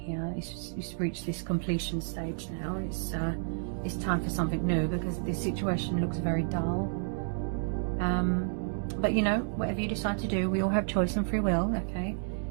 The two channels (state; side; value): silent; left; digital silence